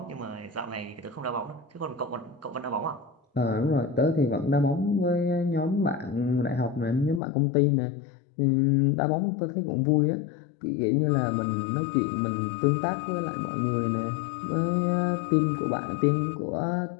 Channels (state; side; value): drops out; right; at 7.2 s